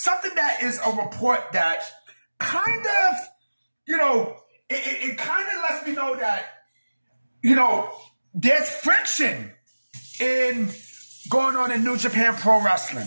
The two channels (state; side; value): inverted; both; correlation -1.00